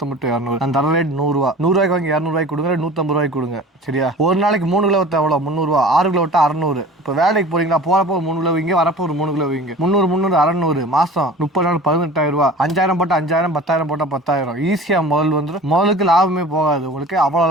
to 200. நான் தர ரேட் 100 ரூபா. 100 ரூபாய்க்கு வாங்கி 200 ரூபாய்க்கு கொடுங்க, 150 ரூபாய்க்கு கொடுங்க. சரியா? ஒரு நாளைக்கு 3 கிலோ வித்தா எவ்வளோ? 300 ரூபா. 6 கிலோ விட்டா 600. இப்போ வேலைக்கு போறீங்களா, போறப்போ 3 கிலோ வைங்க, வரப்போ ஒரு 3 கிலோ வைங்க. 300 600 மாசம் 30 நாள் 18,000 ரூபா. 5000 போட்டா 5000, 10,000 போட்டா 10,000. ஈஸியா முதல் வந்துடும். முதலுக்கு லாபமே போகாது உங்களுக்கு. அவ்வளவு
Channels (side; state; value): both; normal; correlation 0.41